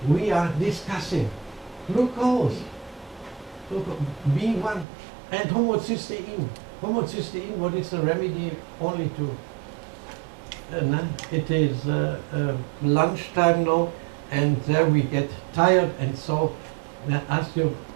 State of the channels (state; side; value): drops out; left; at 4.9 s